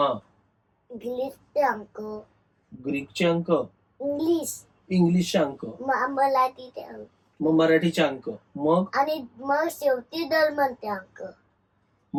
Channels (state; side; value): identical; both; correlation 1.00